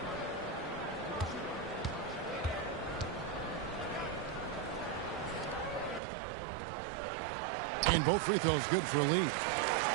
And both free throws good for Lee.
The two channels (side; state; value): left; drops out; at 6.0 s